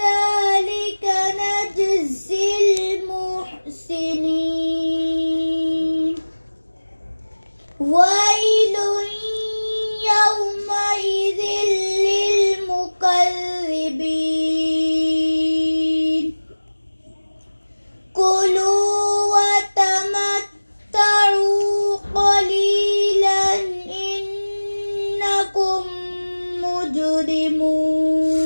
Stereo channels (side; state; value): both; inverted; correlation -1.00